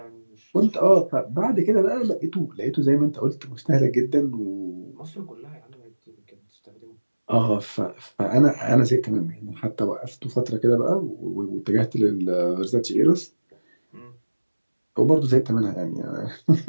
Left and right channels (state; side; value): inverted; both; correlation -1.00